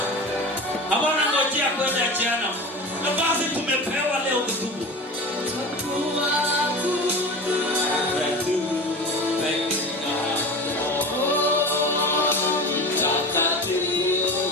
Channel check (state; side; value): normal; both; correlation 0.31